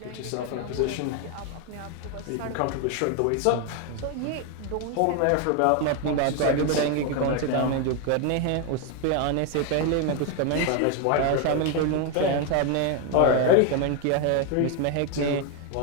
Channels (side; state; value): both; different; correlation 0.01